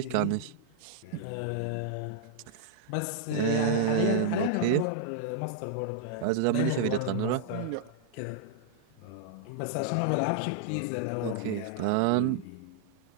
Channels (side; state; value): both; different; correlation -0.01